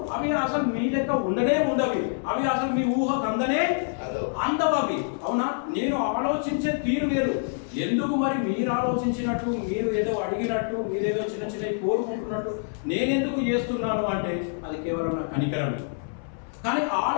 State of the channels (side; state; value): right; silent; 61 dB below the other